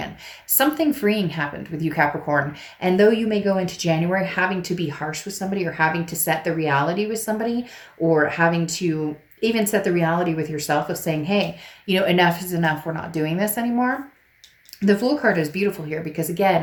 Something freeing happened with you, Capricorn. And though you may go into January having to be harsh with somebody, or having to set the reality with somebody, or having to even set the reality with yourself of saying, hey, you know, enough is enough. We're not doing this anymore. The Fool card is beautiful here because,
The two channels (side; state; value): both; identical; correlation 1.00